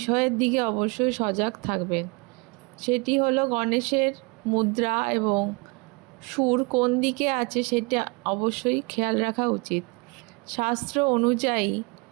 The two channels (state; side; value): quieter; left; 28.8 dB